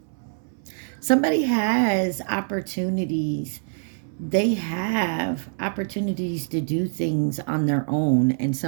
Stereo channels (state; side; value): silent; left; 62 dB below the other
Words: Somebody has opportunities. They have opportunities to do things on their own, and